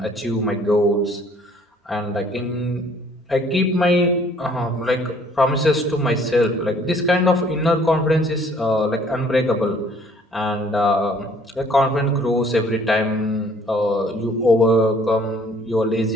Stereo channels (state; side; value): normal; both; correlation 0.58